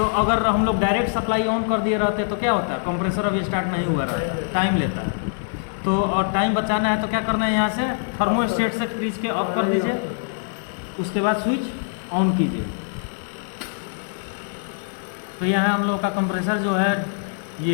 अगर हम लोग डायरेक्ट सप्लाई ऑन कर दिए रहते तो क्या होता है, कंप्रेसर अभी स्टार्ट नहीं हुआ रहता, टाइम लेता है। तो और टाइम बचाना है तो क्या करना है, यहाँ से थर्मोस्टेट से फ्रीज के ऑफ कर दीजिए, उसके बाद स्विच ऑन कीजिए। तो यहाँ हम लोग का कंप्रेसर जो है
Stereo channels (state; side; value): silent; right; digital silence